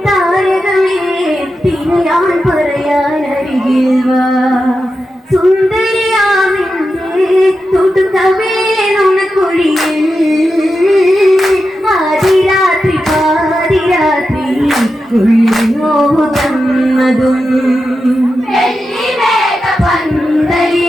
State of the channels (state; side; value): normal; both; correlation 0.90